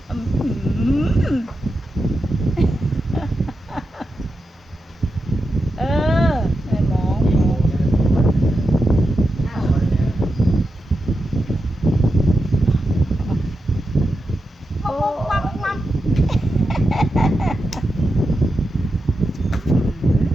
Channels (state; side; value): normal; both; correlation 0.88